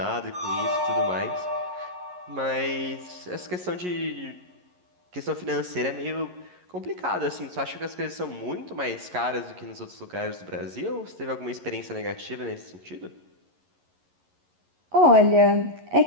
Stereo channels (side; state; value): left; late; 11 ms